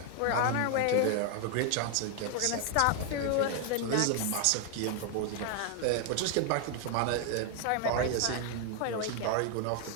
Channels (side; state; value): both; different; correlation 0.00